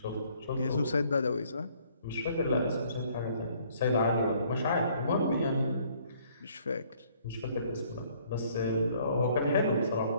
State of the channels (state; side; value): inverted; both; correlation -0.62